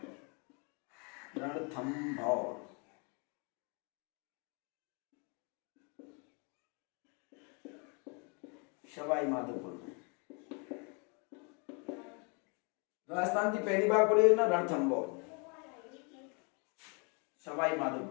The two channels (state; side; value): quieter; right; 34.2 dB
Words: सवाई माधोपुर में राजस्थान की पहली बाघ परियोजना रणथंभौर, सवाई